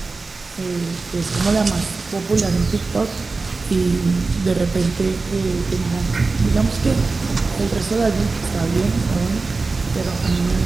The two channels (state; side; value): quieter; left; 3.9 dB